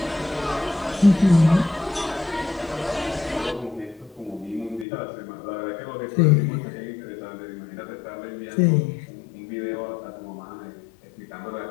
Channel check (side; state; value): right; drops out; at 4.9 s